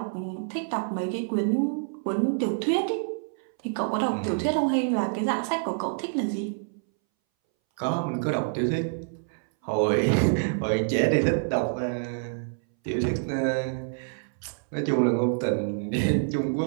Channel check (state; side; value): silent; left; 60 dB below the other